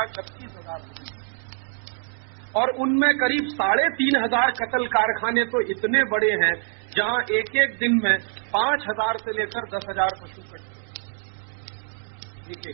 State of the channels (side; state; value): left; silent; 62 dB below the other